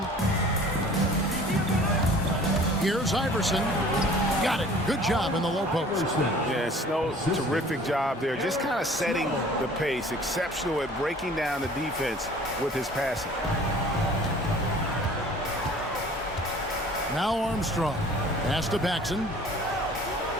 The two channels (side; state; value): both; normal; correlation 0.49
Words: Here's Iverson. Got it. Good job in the low post. Yeah, Snow, terrific job there. Just kind of setting the pace. Exceptional at breaking down the defense with his passing. Now Armstrong. Pass to Paxson.